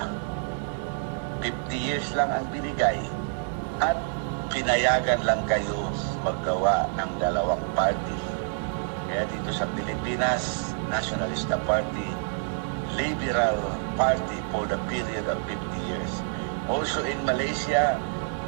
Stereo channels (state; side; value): silent; left; digital silence